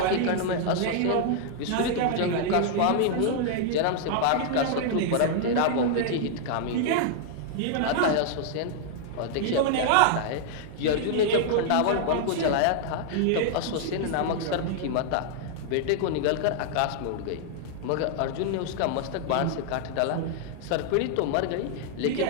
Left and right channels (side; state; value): both; different; correlation -0.01